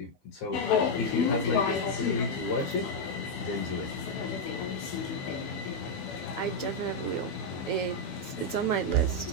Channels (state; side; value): late; right; 12 ms